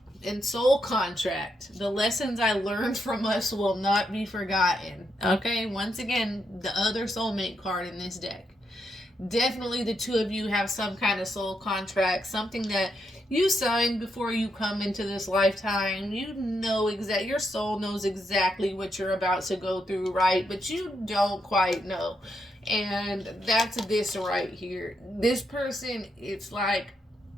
and soul contract. The lessons I learned from us will not be forgotten. Okay, once again, the other soulmate card in this deck. Definitely the two of you have some kind of soul contract, something that you signed before you come into this lifetime. You know your soul knows exactly what you're about to go through, right? But you don't quite know. And that's this right here. This person, it's like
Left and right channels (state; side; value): normal; both; correlation 0.80